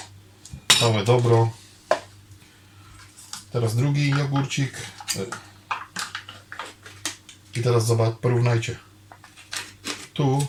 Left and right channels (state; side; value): identical; both; correlation 1.00